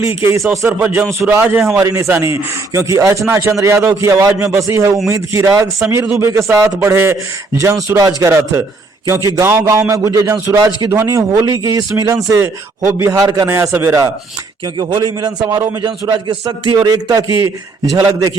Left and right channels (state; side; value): quieter; left; 3.6 dB